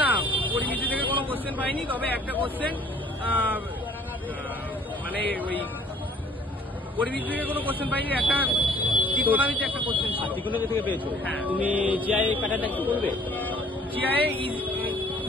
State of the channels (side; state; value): both; normal; correlation 0.56